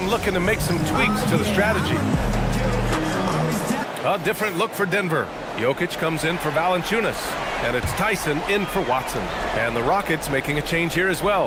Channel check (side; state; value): both; identical; correlation 1.00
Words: looking to make some tweaks to the strategy. A different look for Denver. Jokic comes in for Valanciunas. And it's Tyson in for Watson. And the Rockets making a change here as